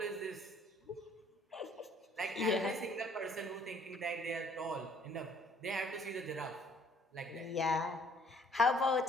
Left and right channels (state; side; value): normal; both; correlation 0.60